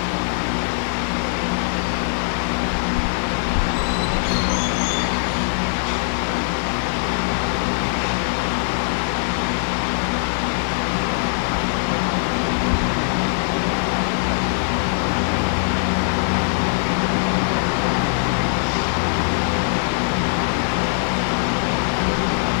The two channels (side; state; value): right; silent; digital silence